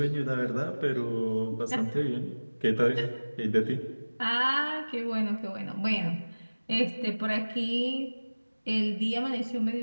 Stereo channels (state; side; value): inverted; both; correlation -1.00